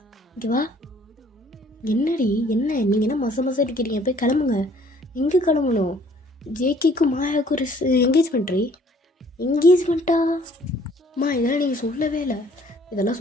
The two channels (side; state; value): both; normal; correlation 0.58